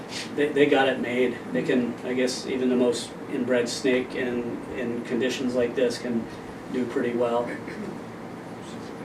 They got it made. They can, I guess, even the most inbred snake in conditions like this can do pretty well.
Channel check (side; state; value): both; identical; correlation 1.00